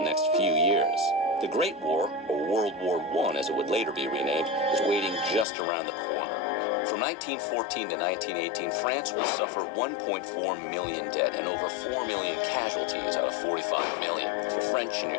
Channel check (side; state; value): right; drops out; at 5.5 s